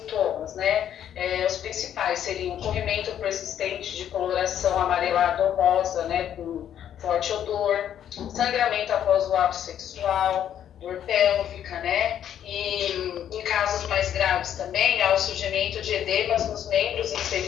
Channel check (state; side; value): quieter; right; 10.0 dB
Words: né? Os principais seriam corrimento persistente de coloração amarelada ou rosa, né, com forte odor, sangramento após o ato sexual, dor pélvica, né? E em casos mais graves também, há o surgimento de edemas nos membros